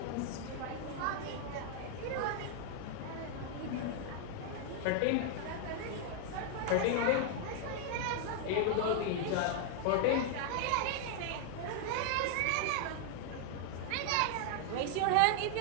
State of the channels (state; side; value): different; both; correlation 0.00